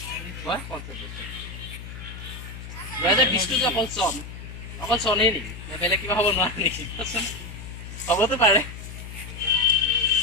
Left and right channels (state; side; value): noise; left; hum, 11 dB below the sound